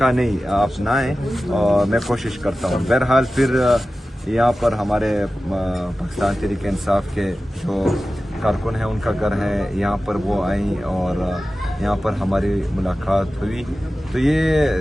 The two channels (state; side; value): normal; both; correlation 0.95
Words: نہیں، آپ نہ آئیں، اور میں کوشش کرتا ہوں۔ بہرحال پھر یہاں پر ہمارے پاکستان تحریک انصاف کے جو کارکن ہیں ان کا گھر ہے، یہاں پر وہ آئیں اور یہاں پر ہماری ملاقات ہوئی۔ تو